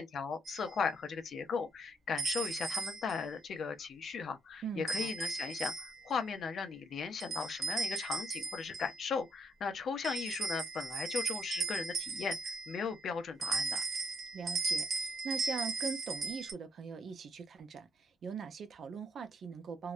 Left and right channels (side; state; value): both; normal; correlation 0.69